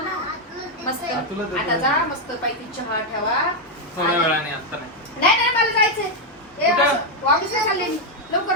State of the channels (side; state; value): both; normal; correlation 0.02